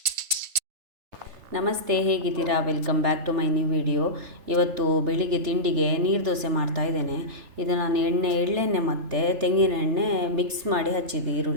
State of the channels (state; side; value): late; left; 3.4 ms